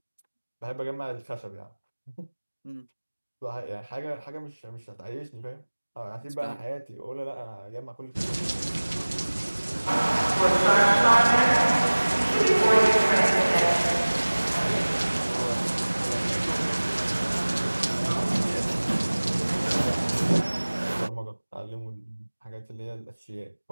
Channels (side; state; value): both; inverted; correlation -1.00